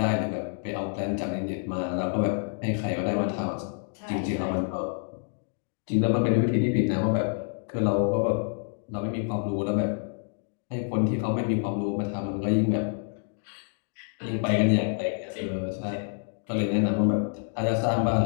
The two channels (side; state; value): right; silent; 60 dB below the other